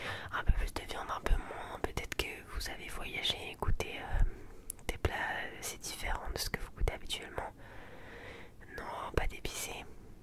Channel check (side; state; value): both; identical; correlation 1.00